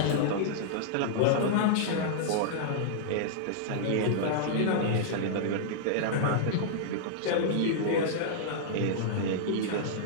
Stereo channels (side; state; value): both; different; correlation -0.02